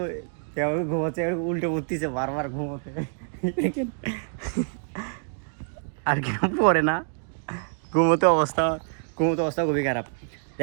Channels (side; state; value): left; silent; 61 dB below the other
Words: কেমন ঘুমোচ্ছে উল্টে উঠতেছে বারবার ঘুমোতে আর কেউ পরে না ঘুমোতে অবস্থা খুবই খারাপ।